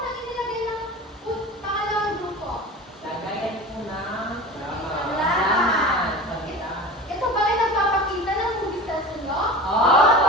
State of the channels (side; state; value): both; normal; correlation 0.34